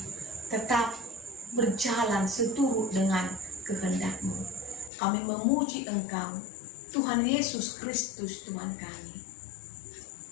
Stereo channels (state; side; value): drops out; right; at 4.9 s